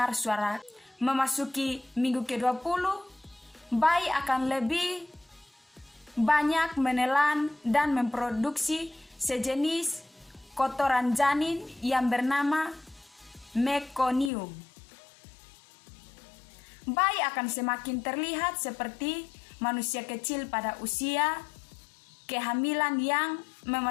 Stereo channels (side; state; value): right; drops out; at 14.3 s